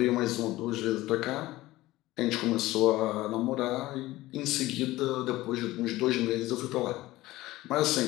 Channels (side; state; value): right; quieter; 17.6 dB